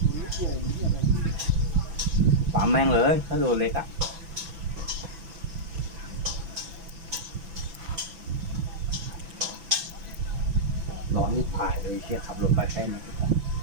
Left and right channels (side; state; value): left; late; 6.0 ms